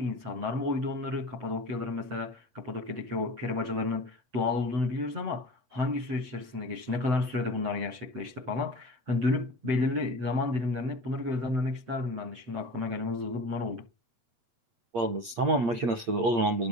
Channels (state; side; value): late; left; 8.6 ms